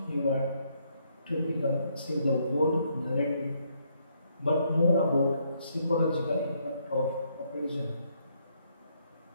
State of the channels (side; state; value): both; inverted; correlation -0.72